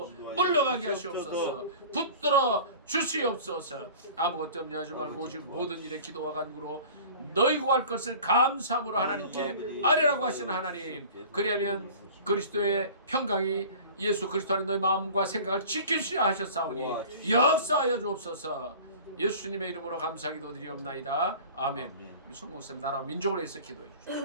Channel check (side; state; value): both; inverted; correlation -0.42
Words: 물러가게 하시옵소서. 붙들어 주시옵소서. 아무것도 염려하지 말고 오직 모든 일에 기도와 간구로 너희 구할 것을 감사함으로 하나님께 아뢰라고 하시는 하나님, 그리하면 그리스도의 평강이 예수 그리스도 안에 너희 마음과 생각을 지키시라 하셨사오니 역사하여 주옵소서. 예수님의 이름으로 감사기도 드리옵나이다. 아멘. 우리 성목쌤 나라 민족을 위해서 기도해